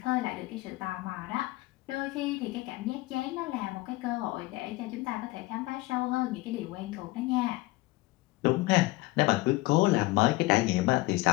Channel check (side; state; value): right; quieter; 20.5 dB